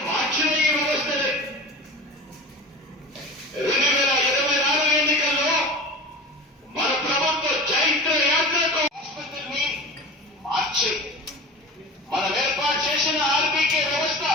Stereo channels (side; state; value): both; normal; correlation 0.33